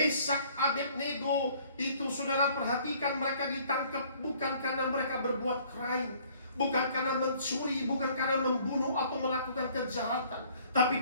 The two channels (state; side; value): inverted; both; correlation -0.58